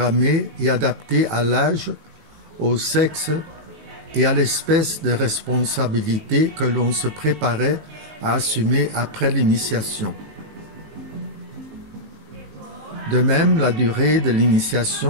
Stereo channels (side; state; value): left; late; 19 ms